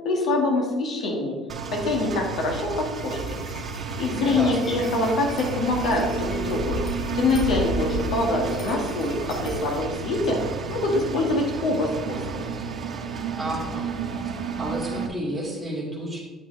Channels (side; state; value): both; normal; correlation 0.47